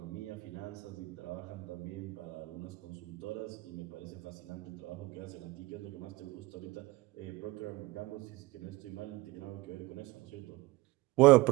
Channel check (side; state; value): left; quieter; 20.4 dB